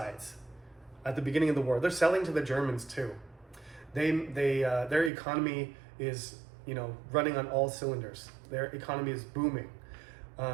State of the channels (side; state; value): left; drops out; at 5.1 s